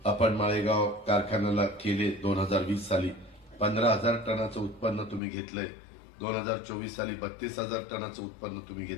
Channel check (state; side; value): drops out; right; at 5.2 s